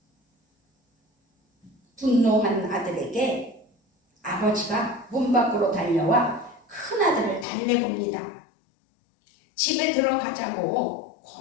분노한 아들에게 아버지가 문 밖으로 달려와 큰아들을 달래봅니다. 집에 들어가자고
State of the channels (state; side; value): drops out; right; at 7.5 s